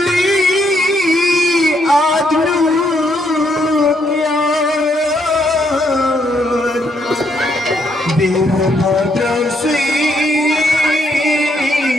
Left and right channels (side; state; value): both; normal; correlation 0.74